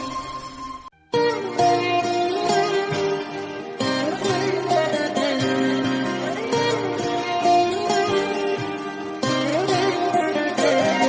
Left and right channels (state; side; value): identical; both; correlation 1.00